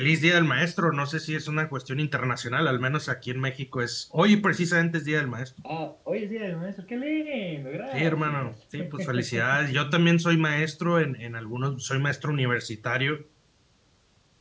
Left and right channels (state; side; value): identical; both; correlation 1.00